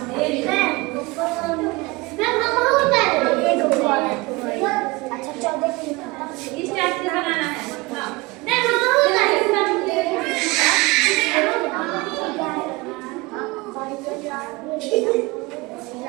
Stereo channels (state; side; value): quieter; left; 23.6 dB